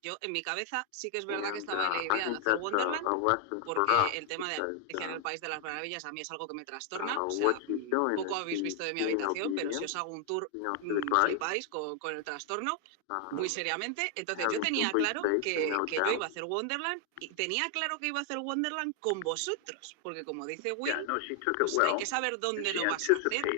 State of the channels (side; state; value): both; different; correlation 0.00